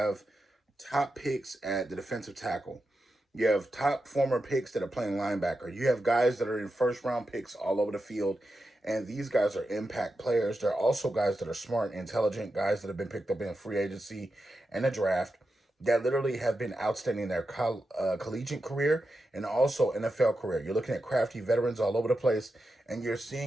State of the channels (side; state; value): both; normal; correlation 0.89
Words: top picks at the defensive tackle. You have top former picks that are playing linebacker. You have guys that are in first-round picks all over the field, and these guys are impact players. They're also guys that are smart, intelligent, guys that have been picked up in free agency and the draft that literally have been outstanding in their collegiate career and also NFL career. You're looking at crafty veterans all over the place, and you're